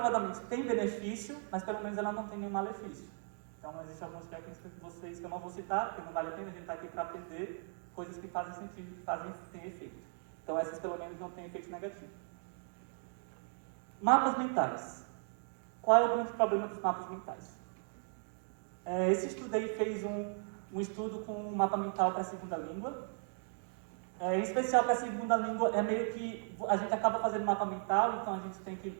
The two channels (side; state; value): left; silent; 53 dB below the other